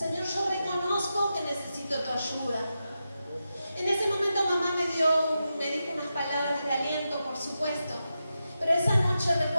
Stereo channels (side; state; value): both; inverted; correlation -0.89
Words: yo reconozco que necesito tu ayuda. En ese momento mamá me dijo unas palabras de aliento, por supuesto. Pero esa noche